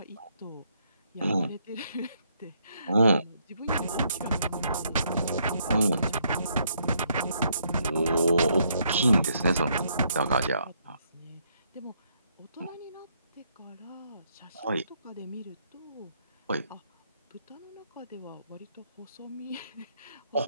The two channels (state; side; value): inverted; both; correlation -0.73